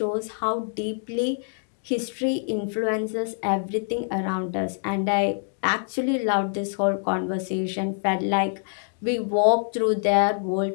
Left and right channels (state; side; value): silent; right; digital silence